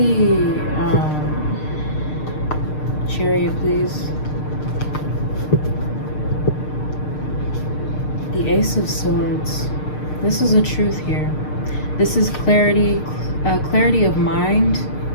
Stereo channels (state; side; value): late; right; 6.6 ms